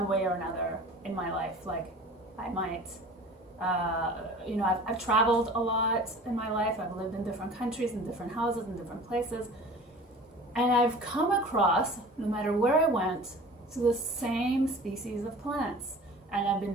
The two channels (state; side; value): normal; both; correlation 0.42